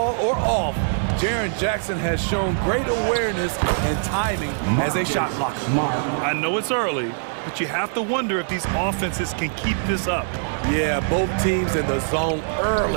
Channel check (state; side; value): silent; left; 59 dB below the other